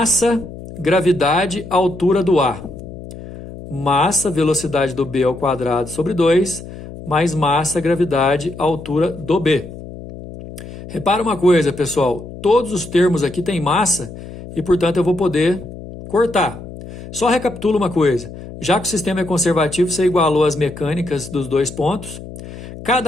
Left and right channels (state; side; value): noise; left; hum, 13 dB below the sound